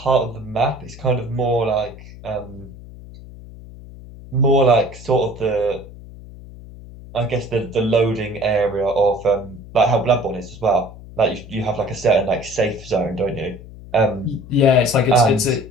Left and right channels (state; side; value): noise; left; hum, 17 dB below the sound